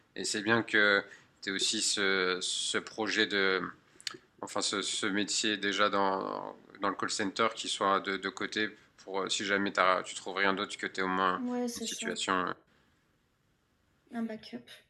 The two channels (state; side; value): identical; both; correlation 1.00